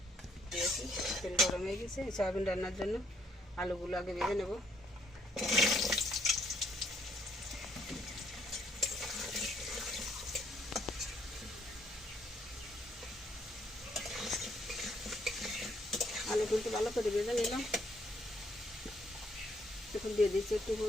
দিয়েছি, তেল গরম হয়ে গেছে সয়াবিন রান্নার জন্য। আলুগুলো আগে ভেজে নেব। আলু কিন্তু ভালো করে ভেজে নিলাম। এখন দিয়ে দিচ্ছি একটু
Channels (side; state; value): both; normal; correlation 0.68